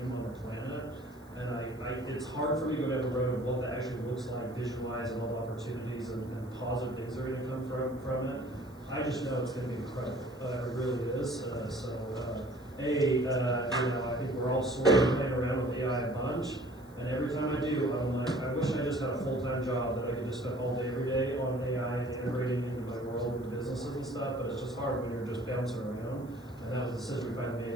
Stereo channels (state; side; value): noise; left; hiss, 28 dB below the sound